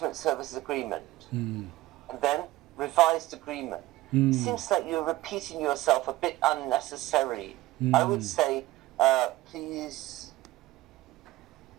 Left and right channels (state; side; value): quieter; left; 17.0 dB